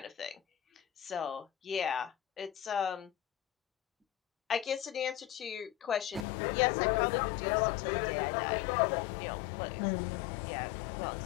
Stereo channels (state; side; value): drops out; right; at 6.2 s